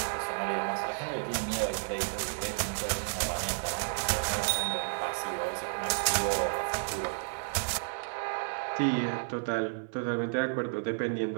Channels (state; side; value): silent; left; 57 dB below the other